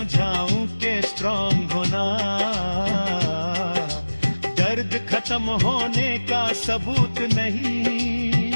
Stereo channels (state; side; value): inverted; both; correlation -1.00